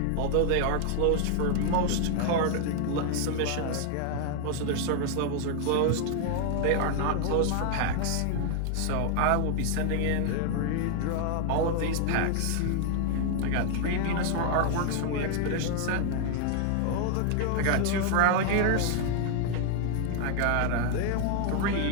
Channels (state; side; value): different; both; correlation 0.00